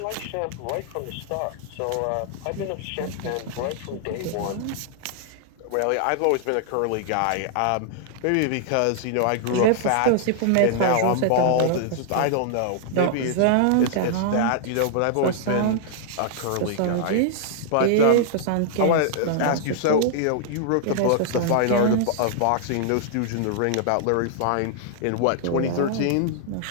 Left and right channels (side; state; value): both; different; correlation -0.01